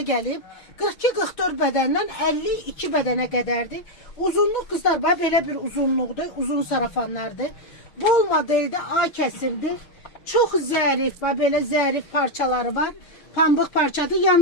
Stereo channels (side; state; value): right; late; 6.4 ms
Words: gəlib. 42-44 bədəndən 52 bədənə qədərdir. Uzunluq kızlar bax belə bir uzunluqdur. Uzun sarafanlardır. Bol modeldə A kəsimdir. Çox zərif, bax belə zərif parçaları var. Pambıq parçadır.